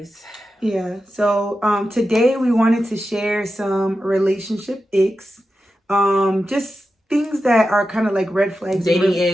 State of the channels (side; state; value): both; normal; correlation 0.91